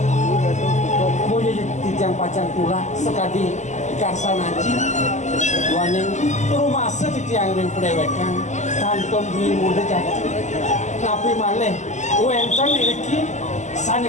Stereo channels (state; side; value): late; right; 0.34 ms